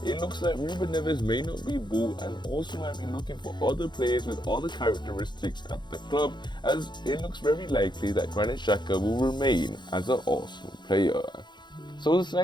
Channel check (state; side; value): late; right; 0.21 ms